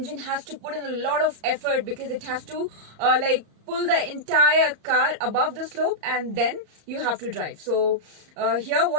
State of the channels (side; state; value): left; late; 34 ms